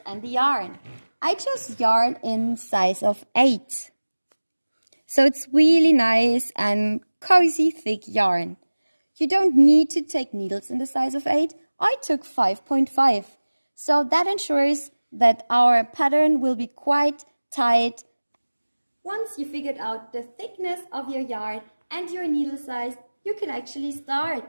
and the yarn. I chose yarn in size of 8. So it's really nice and cozy thick yarn. You don't need to take needles in the size of 8. I took 5.5. So that ensures that our pattern will be quite tight. Once you figured out the thickness of your yarn and your needle size, you can actually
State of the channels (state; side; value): inverted; both; correlation -1.00